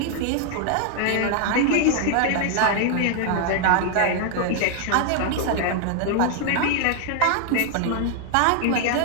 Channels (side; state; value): both; different; correlation 0.00